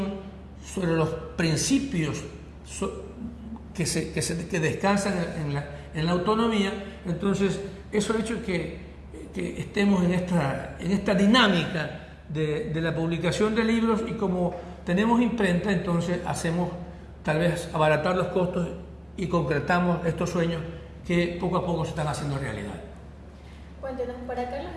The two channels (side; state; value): both; identical; correlation 1.00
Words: sobre los principios que descansan en la autonomía. Entonces, eso ha hecho que estemos en esta dinámica de la publicación de libros, y como tenemos imprenta, entonces hacemos tal vez abaratar los costos y concretamos estos sueños que poco a poco se están haciendo realidad. Cuéntenos, para Carlos